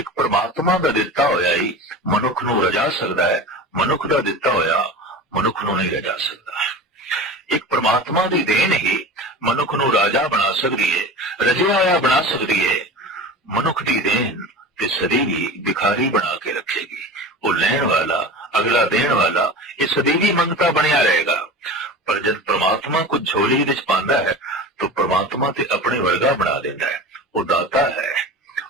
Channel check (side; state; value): both; normal; correlation 0.33